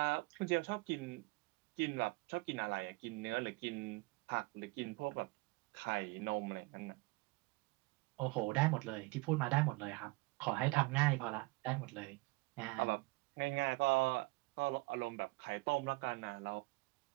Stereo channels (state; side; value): quieter; left; 24.8 dB